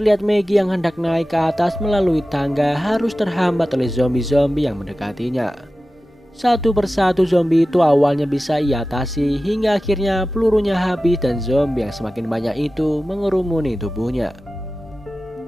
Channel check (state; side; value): normal; both; correlation 0.95